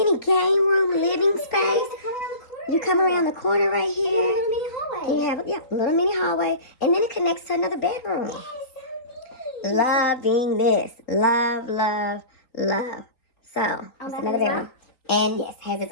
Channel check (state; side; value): late; right; 4.0 ms